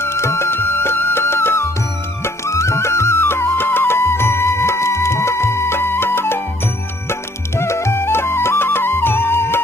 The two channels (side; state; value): both; normal; correlation 0.62